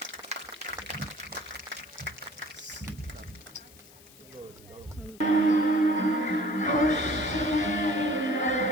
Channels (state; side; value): noise; left; hiss, 23 dB below the sound